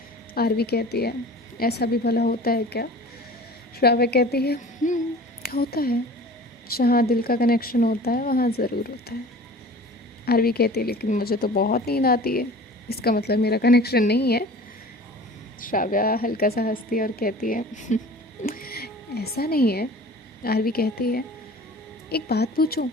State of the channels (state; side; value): normal; both; correlation 0.42